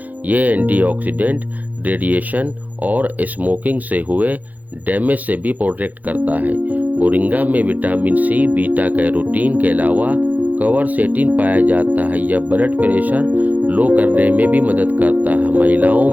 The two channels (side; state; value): left; late; 0.080 ms